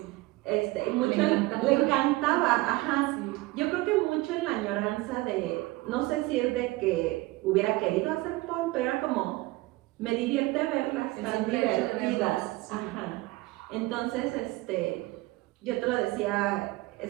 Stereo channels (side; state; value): left; quieter; 20.5 dB